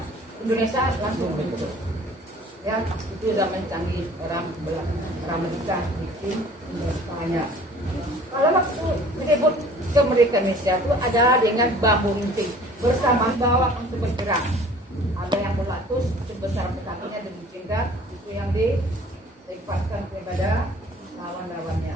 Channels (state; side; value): normal; both; correlation 0.50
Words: Indonesia langsung bentuk, ya, itu zaman canggih, orang menikah bikin Indonesia. Kalau waktu merebut kemerdekaan Indonesia itu adalah dengan bambu runcing bersama bawah untuk bergerak. Ada yang berlatus sebesar kakinya dan jingkat, itu yang dilepaskan kepada lawan-lawannya.